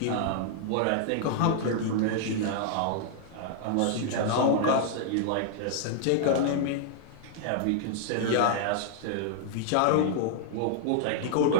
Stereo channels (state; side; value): different; both; correlation -0.01